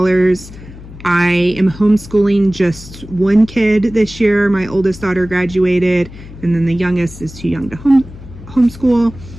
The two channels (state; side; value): noise; left; hum, 16 dB below the sound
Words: I am homeschooling just 1 kid this year. My oldest daughter graduated, and then the youngest is too young to homeschool.